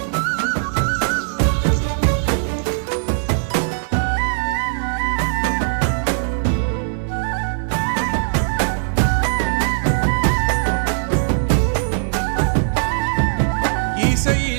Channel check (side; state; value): left; silent; digital silence